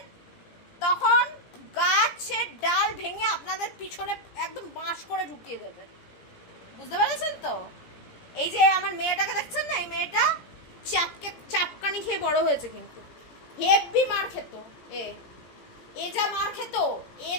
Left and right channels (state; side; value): late; right; 17 ms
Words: তখন গাছের ডাল ভেঙে আপনাদের পিছনে একদম বাঁশ করে ঢুকিয়ে দেবে, বুঝতে পেরেছেন তো? এই যে আমার মেয়েটাকে দেখছেন না, এই মেয়েটা চাপকানি খেয়ে বড় হয়েছে, কিন্তু হেভি মার খেত। এ যা মার খেত, এ